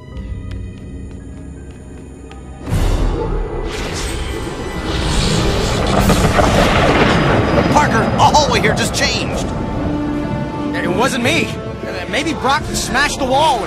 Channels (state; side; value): identical; both; correlation 1.00